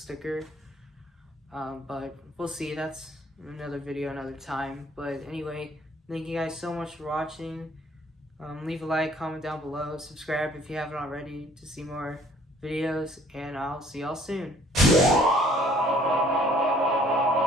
But we'll see. That's another video another time. But anyway, thank you guys so much for watching. Leave a like, comment down below, subscribe if you haven't already to see more videos, and I'll see y'all soon.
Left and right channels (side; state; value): both; normal; correlation 0.58